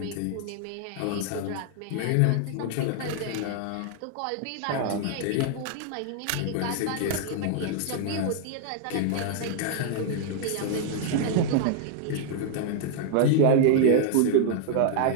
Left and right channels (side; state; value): both; different; correlation -0.01